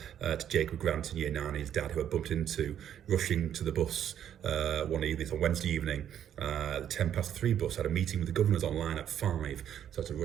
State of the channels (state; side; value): quieter; left; 9.9 dB